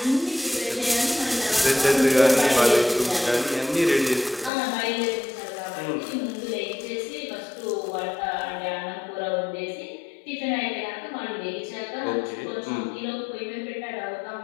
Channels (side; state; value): right; drops out; at 4.5 s